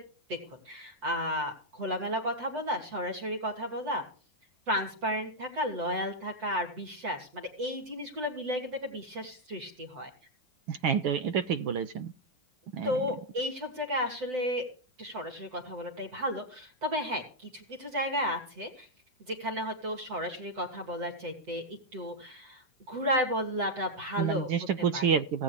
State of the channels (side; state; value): left; late; 7.9 ms